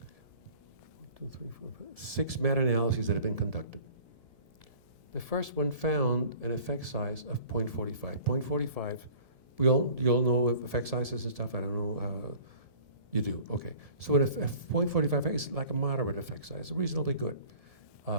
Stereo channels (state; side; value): late; left; 1.7 ms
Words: 6 meta-analyses that have been conducted. The first one found an effect size of 0.45. 0.45, you all know effect sizes and stuff, I don't know, you do, okay. So a 0.45 is like a moderate effect size, reasonably good.